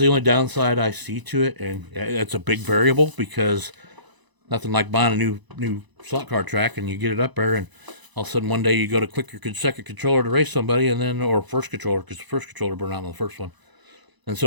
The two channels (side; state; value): left; late; 1.0 ms